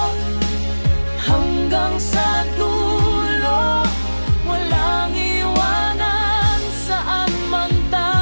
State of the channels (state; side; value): inverted; both; correlation -1.00